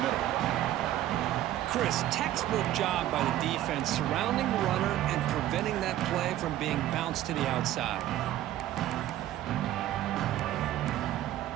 Chris, textbook job by the defense surrounding the runner and preventing that play from being bounced to the outside.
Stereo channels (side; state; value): left; quieter; 13.5 dB